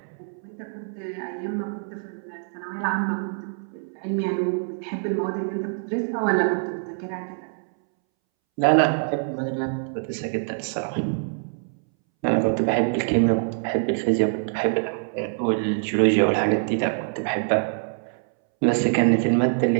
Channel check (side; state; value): left; silent; 62 dB below the other